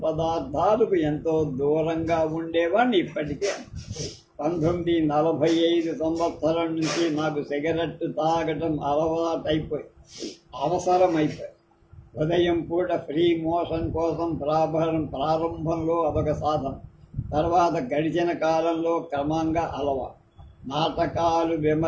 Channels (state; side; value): identical; both; correlation 1.00